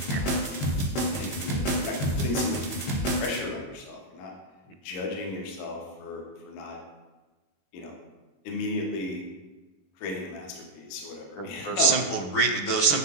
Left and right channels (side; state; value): right; late; 21 ms